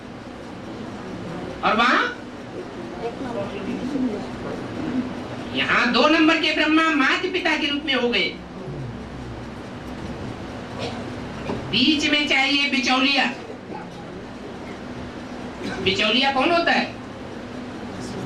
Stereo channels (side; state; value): both; identical; correlation 1.00